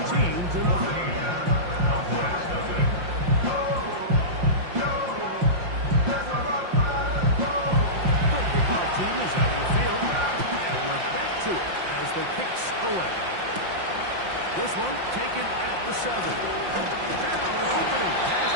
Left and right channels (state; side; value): late; left; 5.7 ms